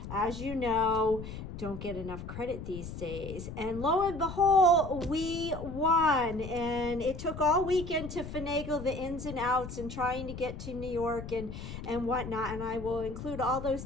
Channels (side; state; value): left; noise; rumble, 9 dB below the sound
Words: as you know, don't get enough credit these days. And lo and behold, we won. And it took all weekend to finagle the ins and outs and trying to get to New York and whatnot. And I will include all those